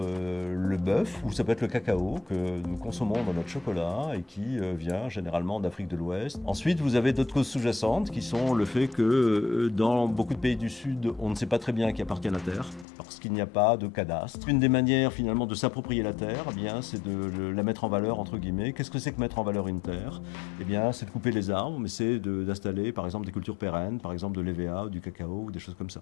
bœuf, ou ça peut être le cacao que nous consommons dans notre chocolat et qui vient généralement d'Afrique de l'Ouest. Ensuite, vous avez d'autres causes sous-jacentes qui sont le fait que dans beaucoup de pays du Sud, on ne sait pas très bien qui appartient à la terre parce qu'il n'y a pas de cadastre. Une des manières finalement de s'approprier la terre, eh bien, c'est de la mettre en valeur entre guillemets. Qu'est-ce que c'est que mettre en valeur une terre? Eh bien, c'est de couper les arbres, mais c'est d'installer par exemple des cultures pérennes, par exemple de l'EVA, du cacao ou des choses comme ça.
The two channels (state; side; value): drops out; right; at 12.9 s